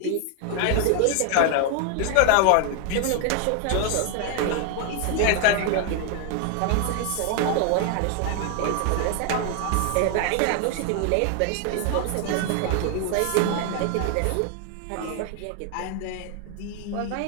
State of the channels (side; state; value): both; different; correlation 0.00